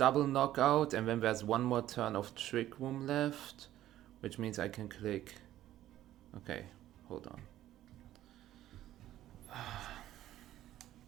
knockout, and then there's one more turn of Trick Room left, which means I can click. Okay, hold on.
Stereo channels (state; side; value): quieter; left; 13.4 dB